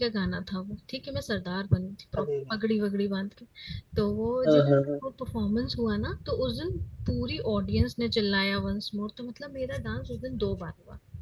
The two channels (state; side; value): identical; both; correlation 1.00